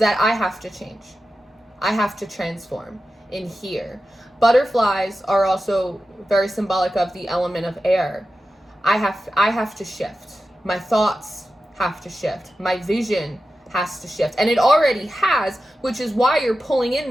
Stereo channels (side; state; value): both; normal; correlation 0.93